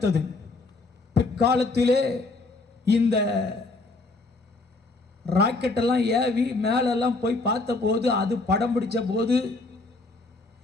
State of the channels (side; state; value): right; quieter; 3.4 dB